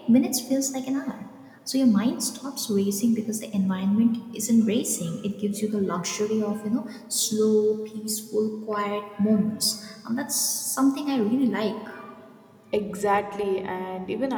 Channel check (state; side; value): identical; both; correlation 1.00